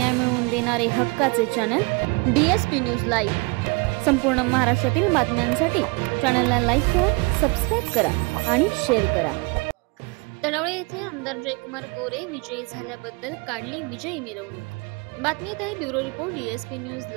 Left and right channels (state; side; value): quieter; left; 29.2 dB